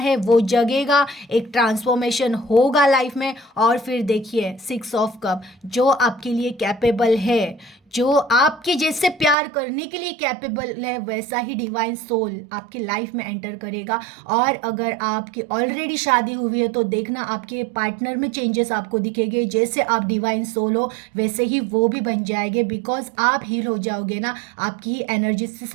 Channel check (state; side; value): drops out; left; at 9.3 s